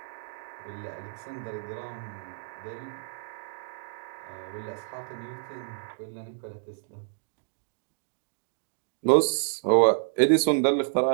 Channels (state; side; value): silent; left; digital silence